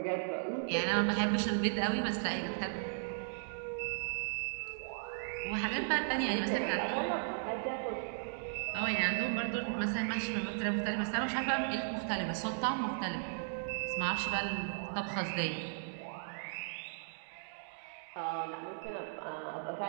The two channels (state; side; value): silent; left; digital silence